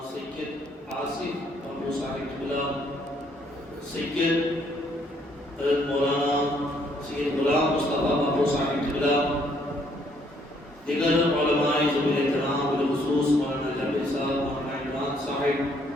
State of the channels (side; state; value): both; normal; correlation 0.67